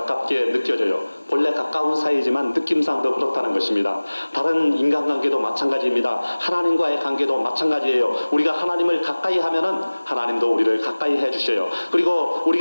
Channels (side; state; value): both; inverted; correlation -1.00